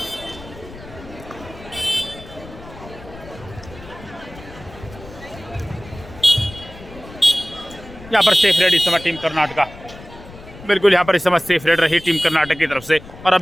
यहाँ पर सेफ रेड इस समय टीम कर्नाटका, बिल्कुल यहाँ पर इस समय सेफ रेड रही टीम कर्नाटक की तरफ से। और अब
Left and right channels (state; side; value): noise; left; rumble, 17 dB below the sound